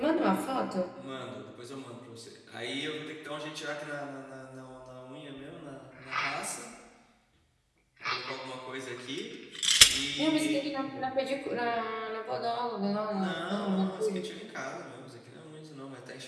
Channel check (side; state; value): both; identical; correlation 1.00